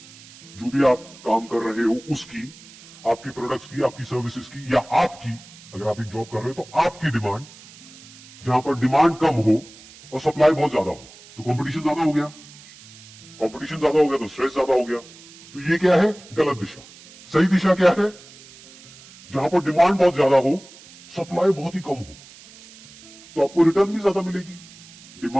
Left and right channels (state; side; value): noise; right; hiss, 21 dB below the sound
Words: जो भी आप काम कर रहे हो उसकी, आपकी प्रोडक्ट्स की, आपकी सर्विसेज की, या आपकी, अगर आप एक जॉब कर रहे हो तो आपकी डिमांड, जहां पर डिमांड कम हो और सप्लाई बहुत ज्यादा हो। तो कंपटीशन ज्यादा हो गया, कंपटीशन ज्यादा हो गया तो स्ट्रेस ज्यादा हो गया। तो ये क्या है? गलत दिशा। सही दिशा क्या है? जहां पर डिमांड बहुत ज्यादा हो, सप्लाई बहुत ही कम हो, तो आपको रिटर्न भी ज्यादा मिलेगी।